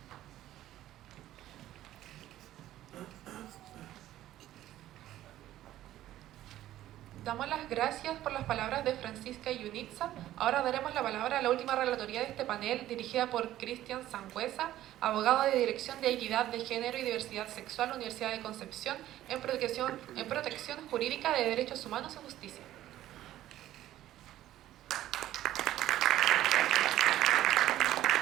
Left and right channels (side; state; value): left; quieter; 13.7 dB